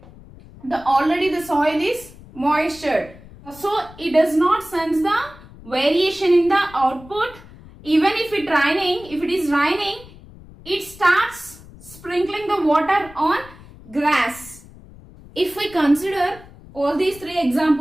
already the soil is moisture. So it does not sense the variation in the output. Even if it is raining, it starts sprinkling the water on grass. If we consider all these three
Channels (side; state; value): left; noise; rumble, 20 dB below the sound